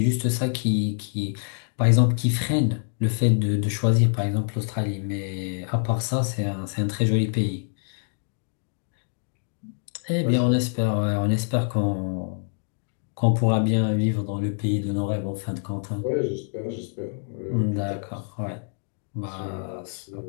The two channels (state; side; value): silent; right; digital silence